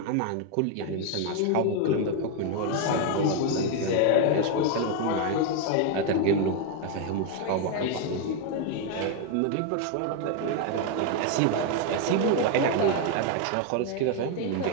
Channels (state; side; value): different; both; correlation 0.01